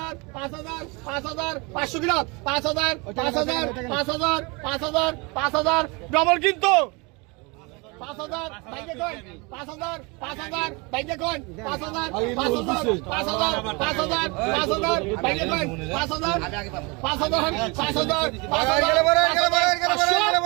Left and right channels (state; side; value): quieter; left; 28.2 dB